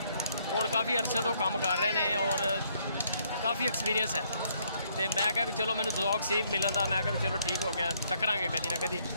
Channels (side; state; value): both; inverted; correlation -0.69